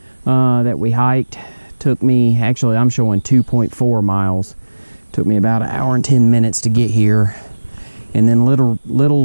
that we hiked. Took me, actually I'm showing 2.4 miles. Took me about 1 hour and 10 minutes to get here. And then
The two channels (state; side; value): inverted; both; correlation -1.00